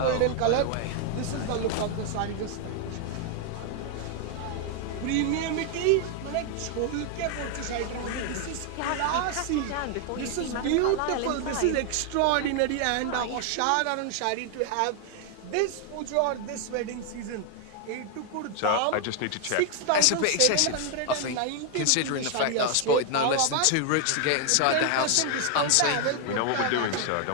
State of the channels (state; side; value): different; both; correlation 0.00